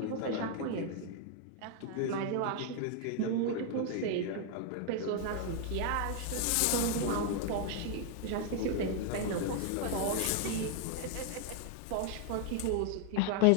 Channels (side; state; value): both; different; correlation 0.00